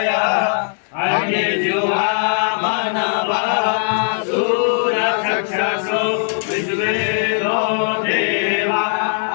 अग्निजुहा मनवा सूरचक्षुषु विश्वेनो देवा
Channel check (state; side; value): silent; right; digital silence